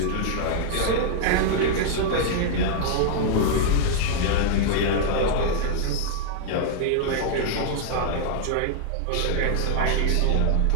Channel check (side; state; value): both; different; correlation -0.01